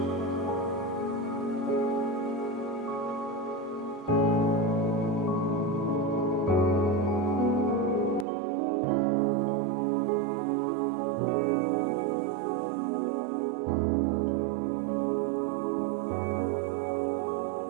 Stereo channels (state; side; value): drops out; left; at 8.2 s